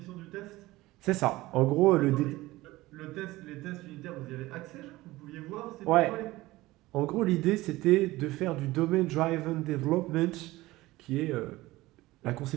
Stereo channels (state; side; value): quieter; left; 18.7 dB